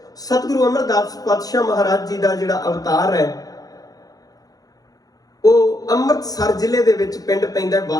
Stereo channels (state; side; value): late; right; 0.18 ms